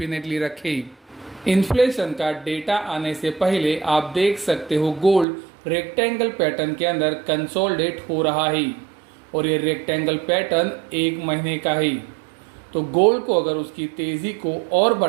रखें। इन्फ्लेशन का डेटा आने से पहले आप देख सकते हो गोल्ड रेक्टेंगल पैटर्न के अंदर कंसोलिडेट हो रहा है और ये रेक्टेंगल पैटर्न 1 महीने का है। तो गोल्ड को अगर उसकी तेज़ी को और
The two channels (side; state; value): left; drops out; at 5.2 s